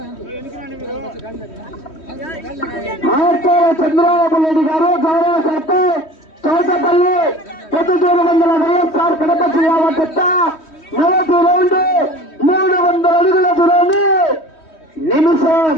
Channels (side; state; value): right; late; 3.1 ms